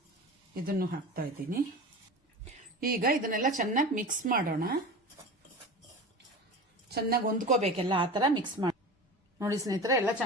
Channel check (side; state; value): both; normal; correlation 0.32